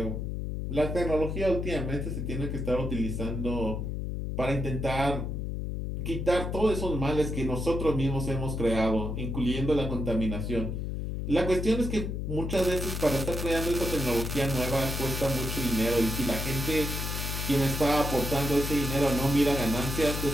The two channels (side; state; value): left; noise; hum, 3 dB below the sound